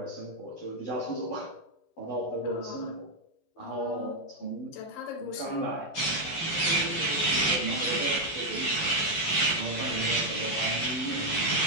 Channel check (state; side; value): late; right; 12 ms